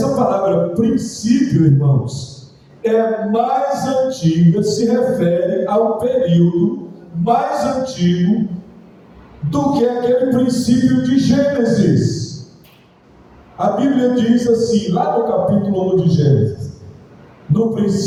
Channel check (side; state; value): both; identical; correlation 1.00